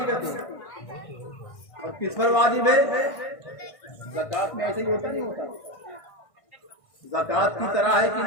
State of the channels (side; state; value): right; late; 1.6 ms